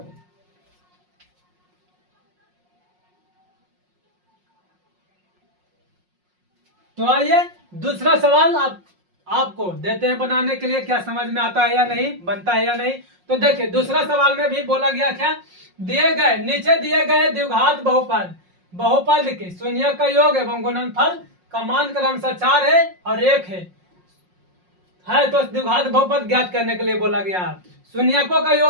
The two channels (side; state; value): left; late; 5.5 ms